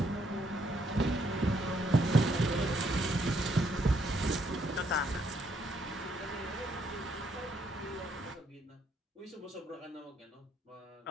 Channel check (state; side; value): normal; both; correlation 0.72